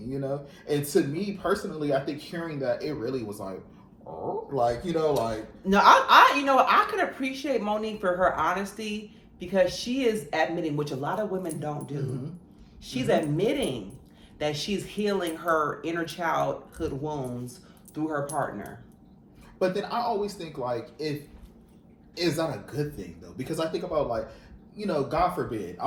know, and to me personally, I think hearing that, it really was like, oh, like, you know, like no, I you know, I could appreciate Monique for her honesty, because she is admitting, which a lot of women don't do. She's admitting that she's healing her inner childhood wounds through her partner. But then I always think like, is that a good thing though? Because I think about like, you know, God forbid,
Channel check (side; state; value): both; identical; correlation 1.00